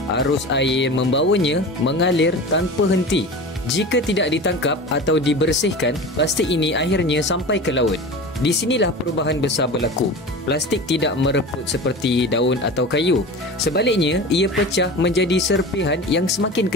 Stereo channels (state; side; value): normal; both; correlation 0.32